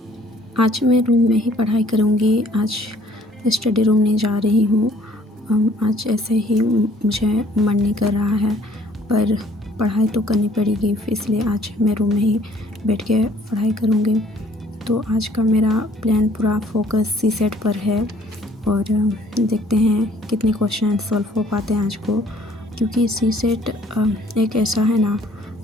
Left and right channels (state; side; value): normal; both; correlation 0.59